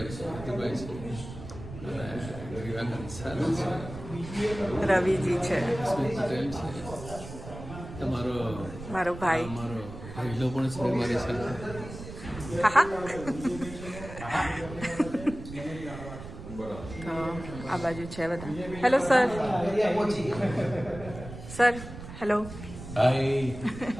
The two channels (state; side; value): noise; right; rumble, 12 dB below the sound